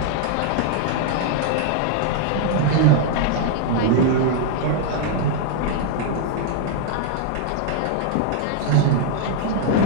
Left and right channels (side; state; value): both; different; correlation 0.00